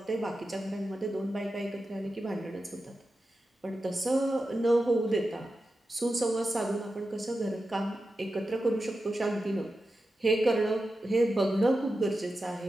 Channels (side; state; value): both; normal; correlation 0.91